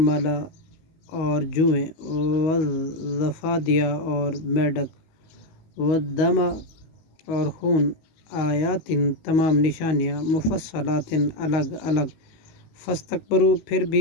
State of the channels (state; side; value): late; right; 19 ms